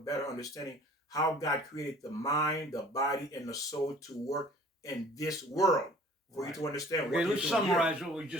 understanding how God created the mind, the body, and the soul to work in this world. For you to understand. Okay, let's summarize what we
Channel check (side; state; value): both; normal; correlation 0.50